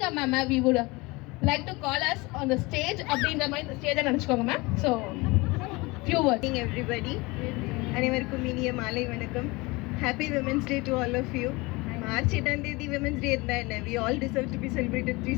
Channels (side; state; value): right; quieter; 23.9 dB